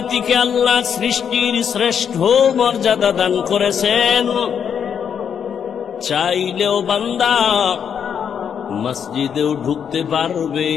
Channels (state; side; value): quieter; right; 7.8 dB